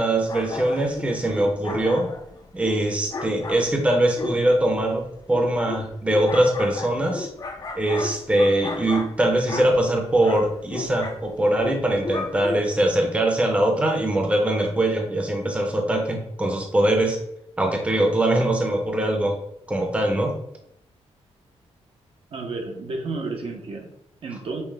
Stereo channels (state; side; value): normal; both; correlation 0.83